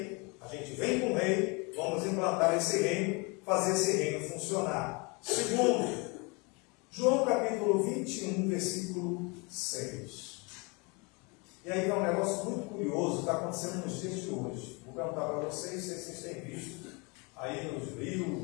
a gente vem com o rei, vamos implantar esse reino, fazer esse reino funcionar. Segundo, João capítulo 21, versículo 6. E aí é um negócio muito curioso, está acontecendo nos dias de hoje. Vou perguntar para vocês se vocês têm visto aí nos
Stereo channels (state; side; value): quieter; right; 29.8 dB